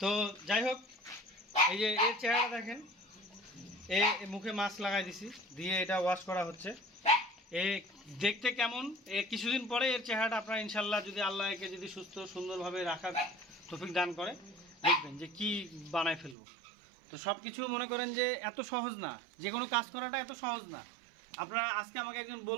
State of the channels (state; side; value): drops out; left; at 16.4 s